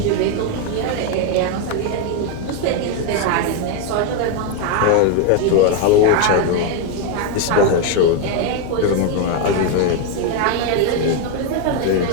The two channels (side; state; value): both; different; correlation 0.02